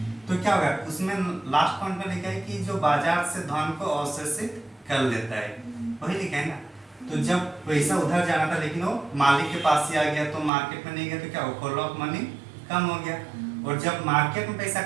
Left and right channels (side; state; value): left; drops out; at 10.5 s